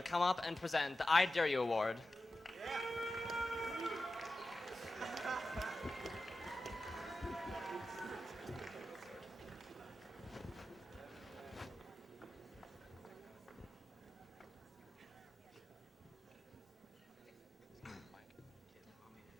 come up and present the I Dare You Award.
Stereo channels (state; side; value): normal; both; correlation 0.92